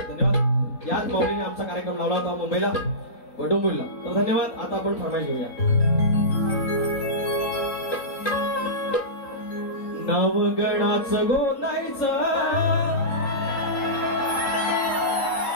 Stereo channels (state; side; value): late; right; 3.8 ms